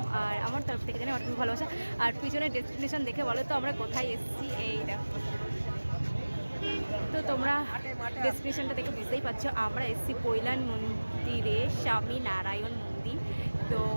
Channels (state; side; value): inverted; both; correlation -1.00